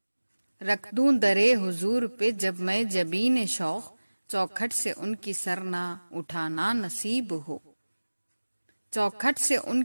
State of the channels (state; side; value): inverted; both; correlation -1.00